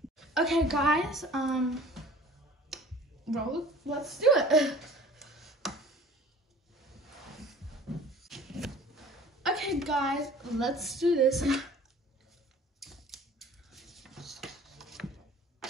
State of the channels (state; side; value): normal; both; correlation 0.47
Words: Okay guys, let's do it. Okay guys, let's do this.